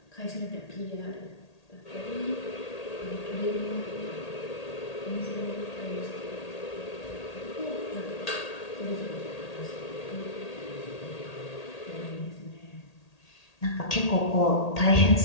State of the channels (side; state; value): right; late; 1.8 ms